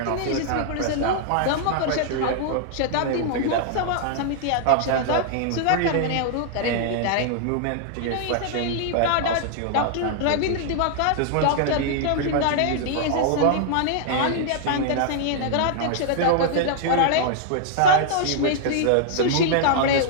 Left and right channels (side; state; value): both; different; correlation -0.01